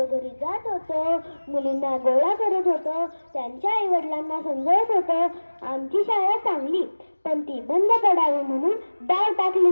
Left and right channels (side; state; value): both; inverted; correlation -1.00